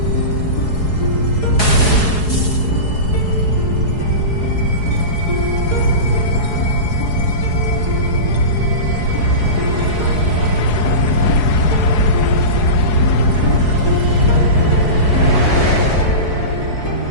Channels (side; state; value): right; late; 4.7 ms